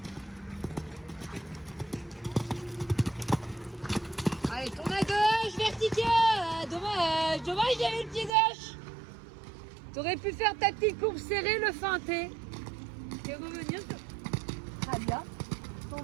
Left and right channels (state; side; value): drops out; left; at 8.3 s